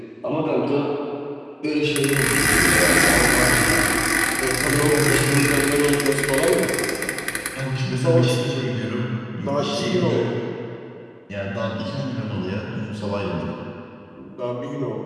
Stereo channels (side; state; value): both; identical; correlation 1.00